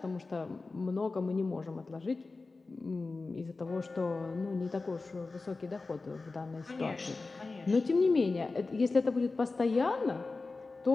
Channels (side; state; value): right; quieter; 3.7 dB